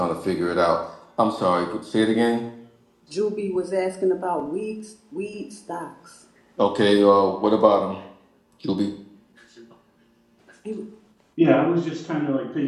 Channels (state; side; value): identical; both; correlation 1.00